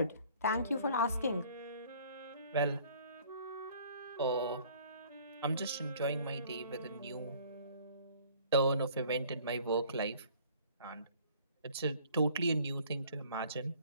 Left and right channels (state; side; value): inverted; both; correlation -0.54